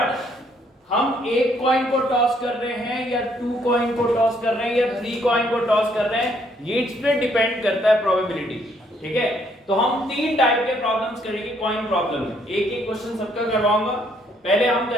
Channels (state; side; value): normal; both; correlation 0.68